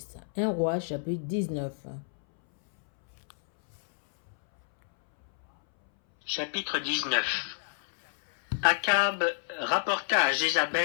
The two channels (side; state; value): right; silent; 59 dB below the other